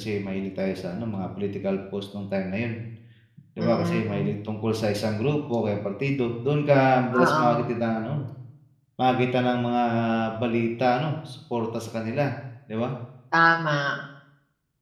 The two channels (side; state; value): both; identical; correlation 1.00